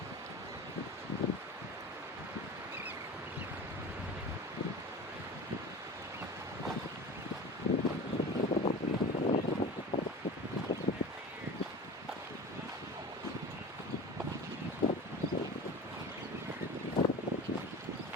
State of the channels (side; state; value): both; normal; correlation 0.35